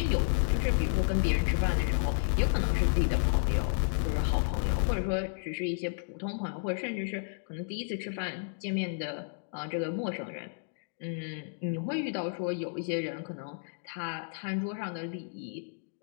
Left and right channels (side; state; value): right; silent; digital silence